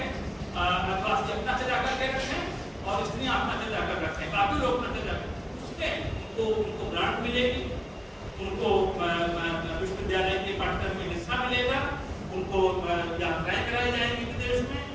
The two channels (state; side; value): identical; both; correlation 1.00